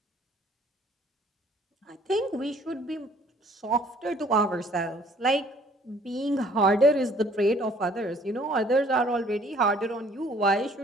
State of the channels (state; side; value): normal; both; correlation 0.58